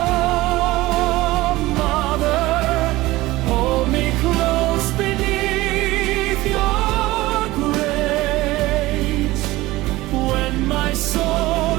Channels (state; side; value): quieter; left; 18.6 dB